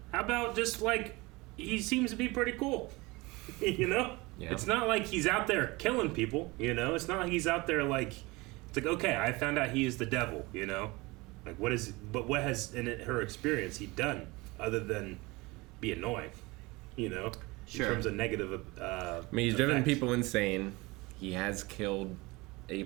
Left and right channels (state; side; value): quieter; left; 23.4 dB